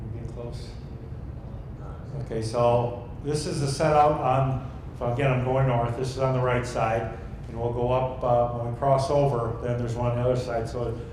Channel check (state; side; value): identical; both; correlation 1.00